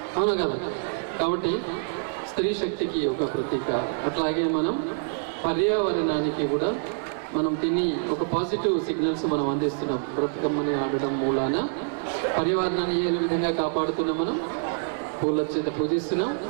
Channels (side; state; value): left; silent; 61 dB below the other